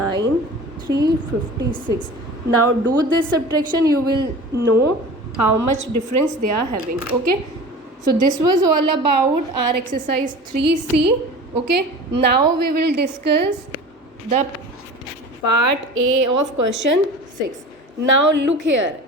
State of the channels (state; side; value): normal; both; correlation 0.37